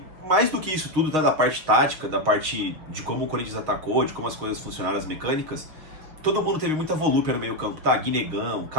mais do que isso tudo, tá? Da parte tática, da parte de como o Corinthians atacou, de como as coisas funcionaram, as mecânicas, todo mundo teve muita volúpia no meio campo, tá? Guinegão,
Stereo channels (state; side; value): late; left; 6.7 ms